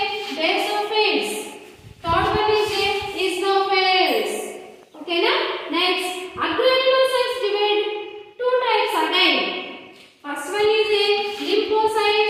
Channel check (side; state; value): both; identical; correlation 1.00